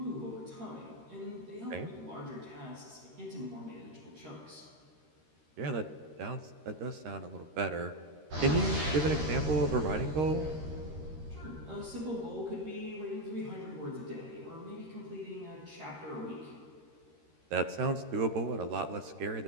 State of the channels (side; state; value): left; late; 13 ms